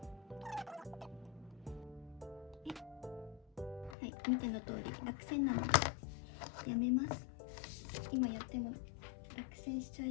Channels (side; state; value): right; drops out; at 4.0 s